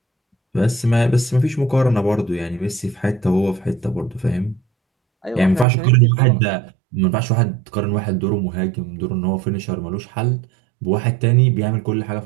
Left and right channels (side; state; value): left; drops out; at 5.7 s